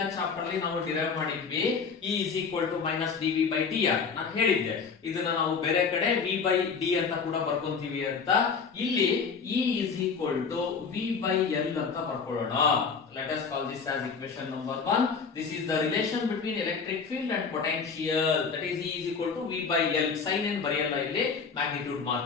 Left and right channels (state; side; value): quieter; right; 5.5 dB